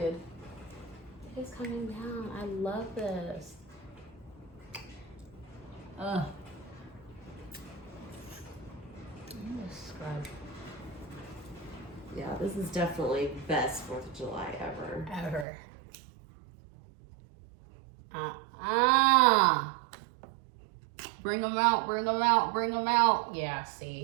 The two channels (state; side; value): drops out; left; at 15.5 s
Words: It's coming down. I love this. I'm gonna scrub. Yeah, this is definitely best 4th of July ever. Bring them out, bring them out, bring them out. Yeah,